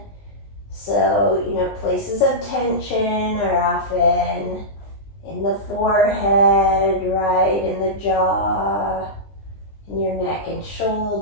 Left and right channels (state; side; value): late; right; 20 ms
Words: So, places of tension are often in the forehead, right, in the jaw, in your neck and